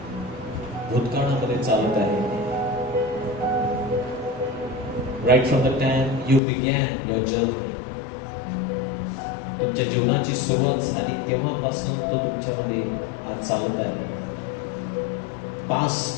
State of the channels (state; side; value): drops out; right; at 6.4 s